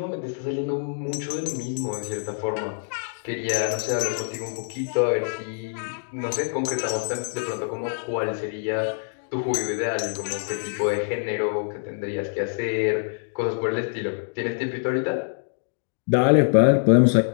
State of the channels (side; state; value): right; silent; 62 dB below the other